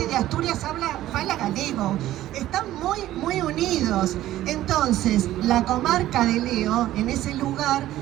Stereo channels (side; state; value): left; quieter; 14.2 dB